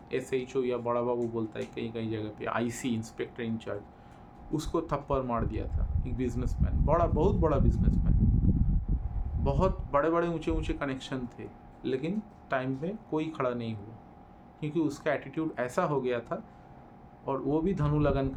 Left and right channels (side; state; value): both; identical; correlation 1.00